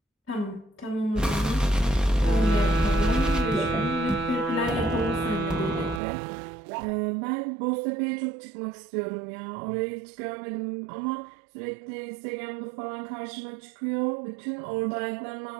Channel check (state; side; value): drops out; left; at 6.0 s